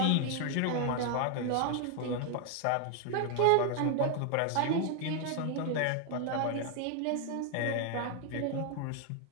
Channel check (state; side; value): different; both; correlation 0.00